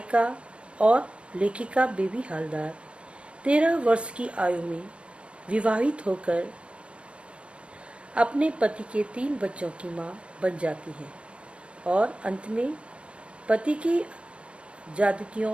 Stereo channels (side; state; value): left; late; 0.060 ms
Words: और लेखिका बेबी हालदार 13 वर्ष की आयु में विवाहित होकर अपने पति के 3 बच्चों की मां बन जाती है और अंत में पति की